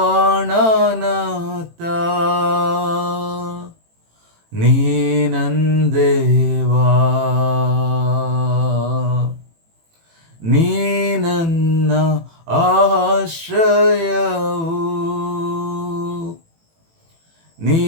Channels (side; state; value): left; late; 18 ms